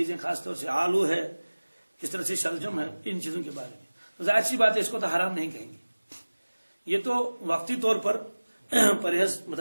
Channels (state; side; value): inverted; both; correlation -1.00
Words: خاص طور سے آلو ہے، کس طرح سے شلجم ہے، ان چیزوں کے بارے میں ظاہر سی بات ہے اس کو تو حرام نہیں کہیں گے. یہ تو وقتی طور پر پرہیز